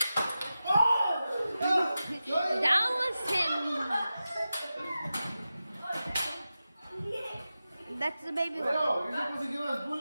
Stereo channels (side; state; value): both; inverted; correlation -0.93